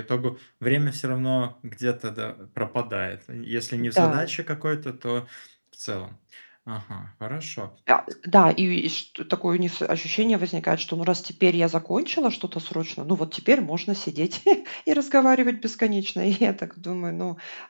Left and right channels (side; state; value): both; inverted; correlation -1.00